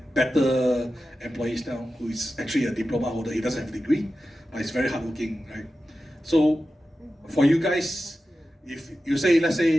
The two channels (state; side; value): normal; both; correlation 0.93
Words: better employees now, who is actually a diploma holder. He doesn't have a degree, but he's very hardworking, right? So for you guys, if you say, let's say